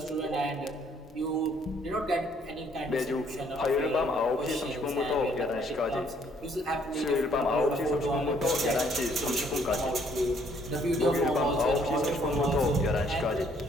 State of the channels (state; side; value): normal; both; correlation 0.65